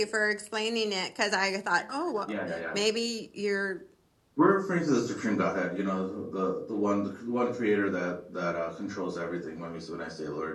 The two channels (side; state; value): both; identical; correlation 1.00